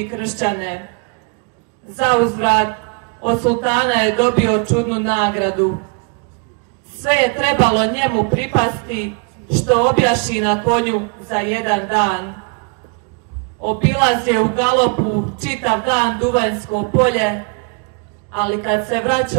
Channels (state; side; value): quieter; left; 36.5 dB